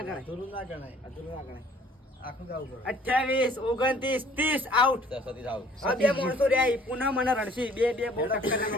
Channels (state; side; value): normal; both; correlation 0.56